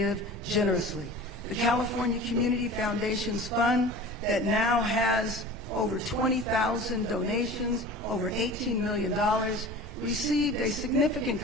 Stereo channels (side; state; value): right; noise; rumble, 17 dB below the sound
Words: generously. The California Community Foundation's fund that now has over 20,000 donations, over $18 million, received a significant